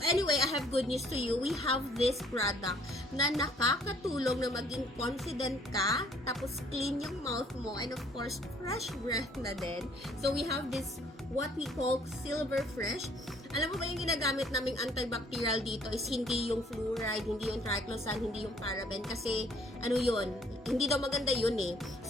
anyway, I have good news to you. We have this product na nakakatulong na maging confident ka, tapos clean yung mouth mo, and of course, fresh breath na din. So, we have this what we call Silver Fresh. Alam mo ba yung ginagamit naming antibacterial dito is hindi yung fluoride, hindi yung triclosan, hindi yung paraben kasi ano yun, hindi daw maganda yun eh.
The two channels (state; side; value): normal; both; correlation 0.61